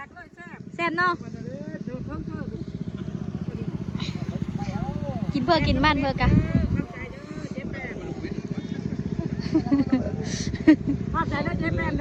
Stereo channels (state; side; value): identical; both; correlation 1.00